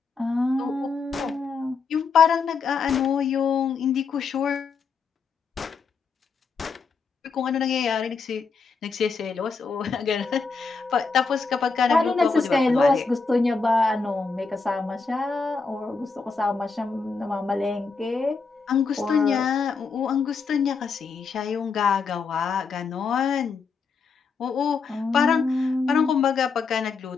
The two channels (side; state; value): right; quieter; 4.9 dB